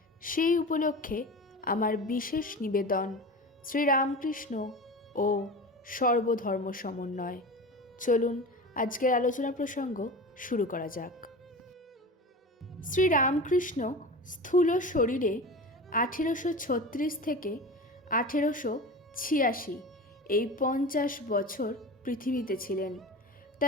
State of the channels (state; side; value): normal; both; correlation 0.31